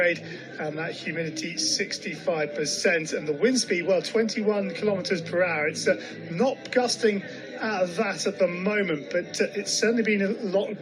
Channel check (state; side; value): identical; both; correlation 1.00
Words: and that humidity 65%, and the wind speed, well, 21 kilometers per hour. It's not gusting at that at the moment, but it's certainly been a lot